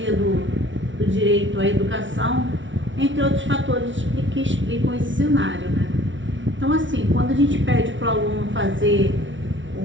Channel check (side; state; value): left; late; 0.55 ms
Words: do direito à educação, entre outros fatores que explicam esse cenário, né? Então, assim, quando a gente pede para o aluno fazer